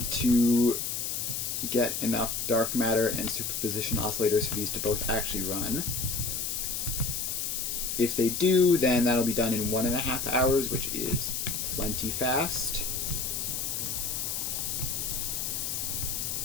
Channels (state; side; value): noise; left; hiss, 2 dB below the sound